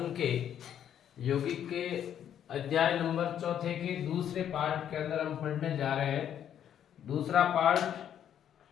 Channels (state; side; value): quieter; right; 9.8 dB